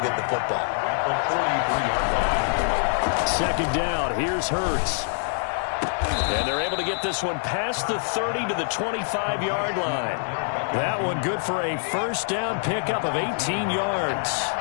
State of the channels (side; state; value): right; silent; digital silence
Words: get the football. 2nd down, here's Hurts. And they're able to get this one past the 30 to the 25-yard line. That one good for a 1st down pickup of 18 yards.